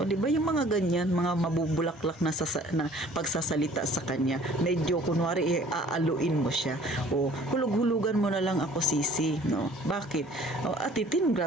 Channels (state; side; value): normal; both; correlation 0.53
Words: di ba yung mga ganyan, mga mabubulaklak na pagsasalita sa kanya. Medyo kunwari aaluin mo siya. Hulug-hulugan mo na lang ako sisi, no? Bakit? Atitin,